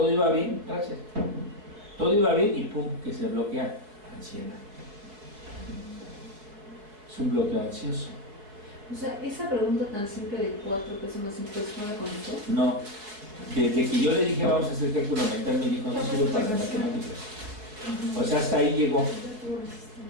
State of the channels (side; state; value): left; late; 4.7 ms